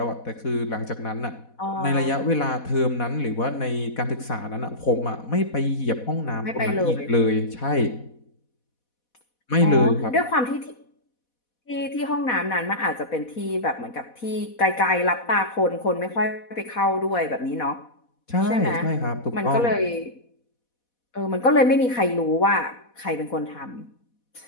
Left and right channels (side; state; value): right; late; 4.1 ms